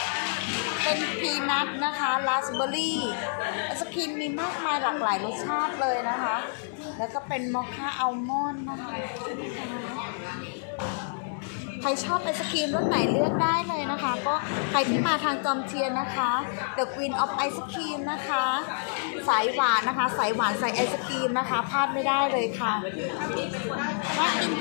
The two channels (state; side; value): silent; right; digital silence